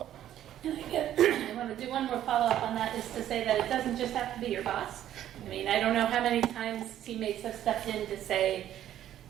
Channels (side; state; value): left; quieter; 11.7 dB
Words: And I want to do one more follow-up on that, is to say that it doesn't just have to be your boss. I mean, I don't know how many times teammates have stepped in to say,